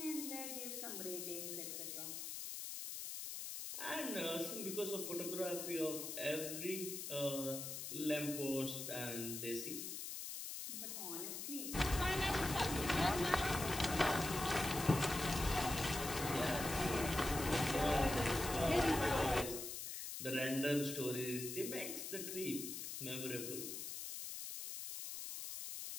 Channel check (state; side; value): noise; left; hiss, 6 dB below the sound